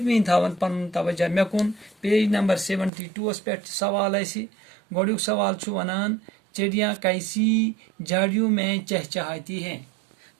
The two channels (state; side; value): drops out; left; at 2.9 s